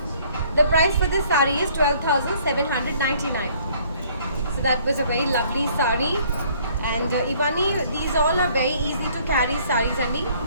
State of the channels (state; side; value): inverted; both; correlation -0.60